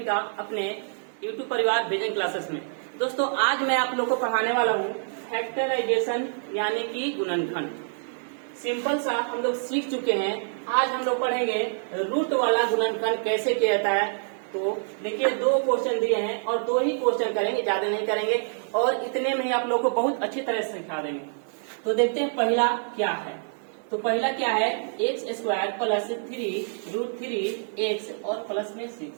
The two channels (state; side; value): silent; left; digital silence